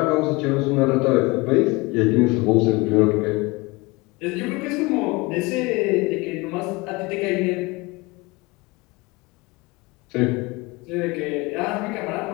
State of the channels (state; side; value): quieter; right; 24.0 dB